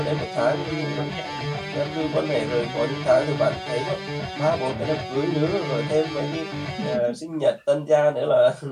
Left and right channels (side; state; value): both; identical; correlation 1.00